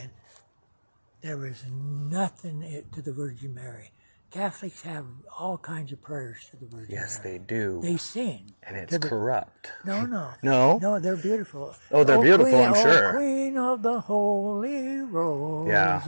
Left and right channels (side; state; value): both; inverted; correlation -1.00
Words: There was nothing to the Virgin Mary. Catholics have all kinds of prayers to the Virgin Mary. Yes, they do. They sing. And it's corrupt. No. No? No, they're beautiful. Oh, they're beautiful, Queen, I'm sure. Oh, Queen of the Holy